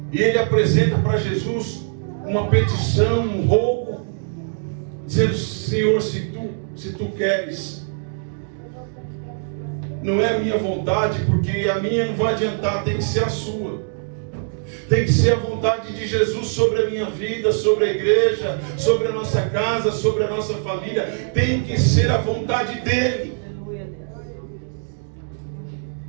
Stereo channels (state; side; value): silent; left; digital silence